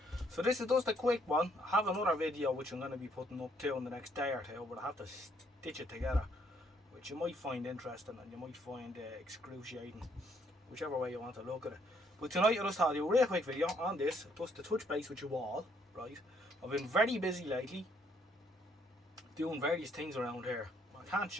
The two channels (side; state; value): both; normal; correlation 0.68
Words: So this is just a quick one. I have another video which I'm going to be putting up too in the next day or two, but I have to stitch it together, which you might find interesting and you might find excruciating, whichever way you want to look at it. But tonight I just thought I'd do a real quick video on this, just to touch base with you all, right? I've been very busy lately, doing various things around here. I can't